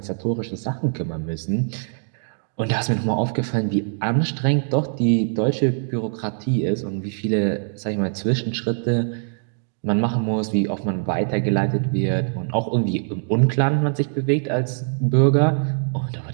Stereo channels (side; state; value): left; silent; digital silence